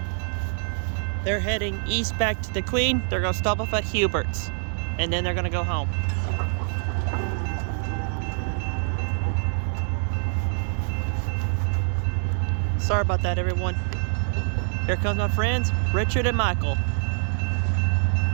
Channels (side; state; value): left; silent; digital silence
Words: They're heading east back to DeQueen. They're gonna stop off at Hubert's, and then they're gonna go home. Sorry about that, everyone. Here comes my friends, Richard and Michael.